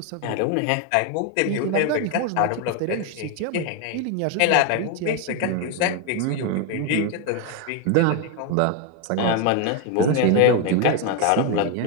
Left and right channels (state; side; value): different; both; correlation 0.01